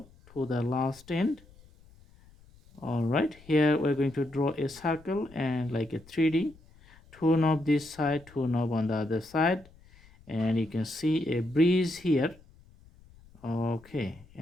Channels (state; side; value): noise; left; rumble, 25 dB below the sound